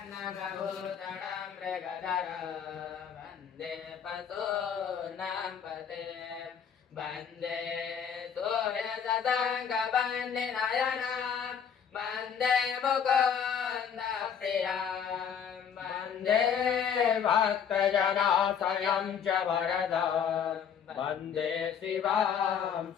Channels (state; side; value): quieter; right; 7.6 dB